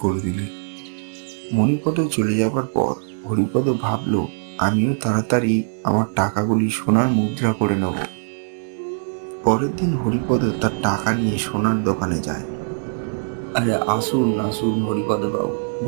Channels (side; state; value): left; silent; 64 dB below the other